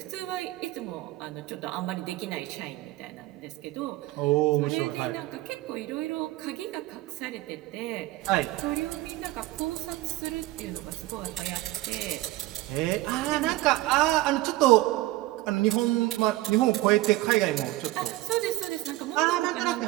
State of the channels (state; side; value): quieter; left; 17.7 dB